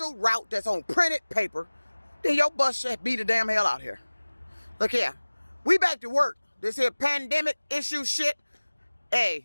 route that's on printed paper, then your bus should be the damn hell out here. Look here, we back to work. This here pandemic issue shit,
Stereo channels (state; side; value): inverted; both; correlation -1.00